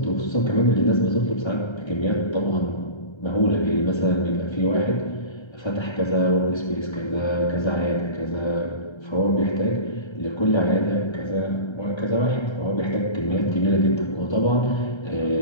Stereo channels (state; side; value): late; right; 1.3 ms